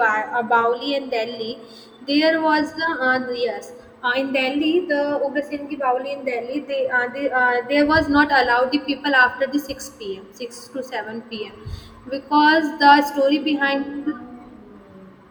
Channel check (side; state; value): both; identical; correlation 1.00